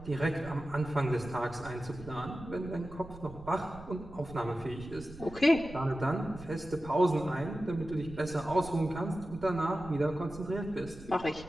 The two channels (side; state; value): right; noise; rumble, 16 dB below the sound